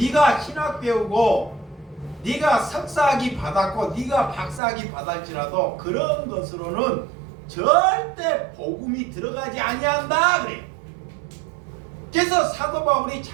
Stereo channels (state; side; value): drops out; left; at 4.6 s